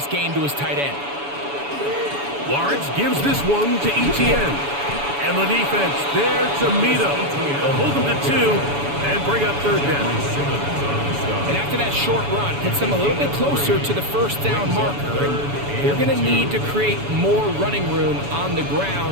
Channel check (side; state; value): left; late; 7.0 ms